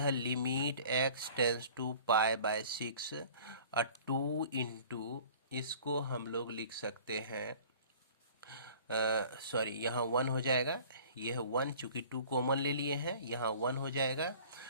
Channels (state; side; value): inverted; both; correlation -0.47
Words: लिमिट x टेंस टू π/6 और 2 × इसको हम लोग लिख सकते हैं, सॉरी यहाँ 1 हो जाएगा, यह 1 चूँकि 2 कॉमन ले लिए हैं, यहाँ 1 हो जाएगा।